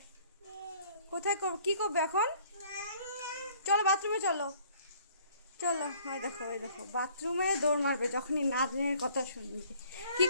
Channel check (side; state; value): both; inverted; correlation -0.58